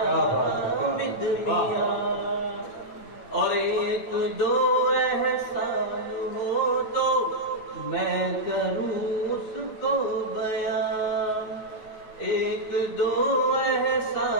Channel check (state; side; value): late; right; 8.8 ms